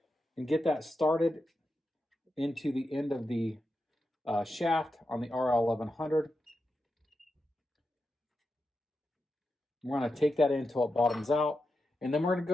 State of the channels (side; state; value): both; normal; correlation 0.88